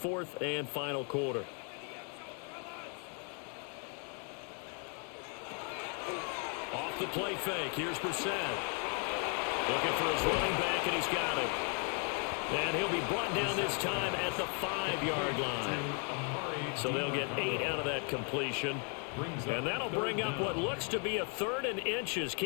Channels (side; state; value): right; quieter; 39.6 dB